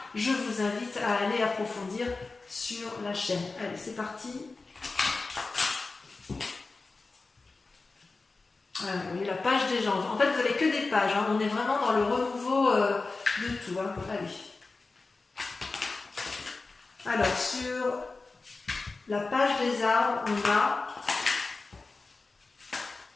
je vous invite à aller approfondir sur la chaîne. Allez, c'est parti. Voilà, vous voyez la page des gens. En fait, vous n'avez que des pages. Hein. On est vraiment dans le renouveau de tout. Hein. Allez. Alors, sur la page des arbres, on a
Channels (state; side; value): quieter; right; 3.8 dB